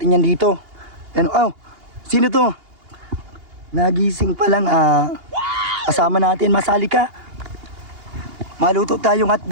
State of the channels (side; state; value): left; late; 2.8 ms